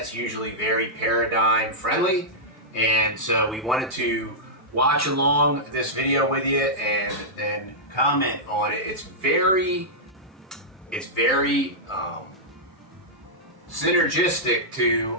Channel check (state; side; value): normal; both; correlation -0.10